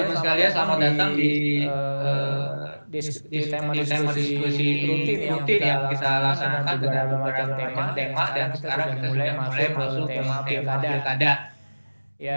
sekalian selamat datang di tema diskusi rutin yang kita laksanakan dengan beberapa macam tema dan sekarang kita sudah mulai masuk ke tema pilkada.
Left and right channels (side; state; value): both; inverted; correlation -1.00